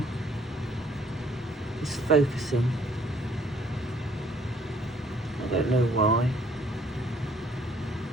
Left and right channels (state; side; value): normal; both; correlation 0.63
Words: is focusing. I don't know why.